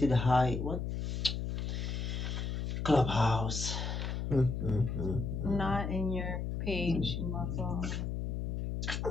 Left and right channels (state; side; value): noise; left; hum, 2 dB below the sound